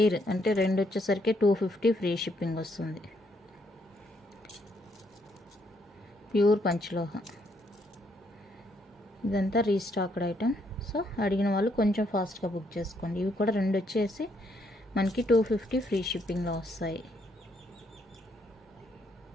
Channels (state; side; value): normal; both; correlation 0.73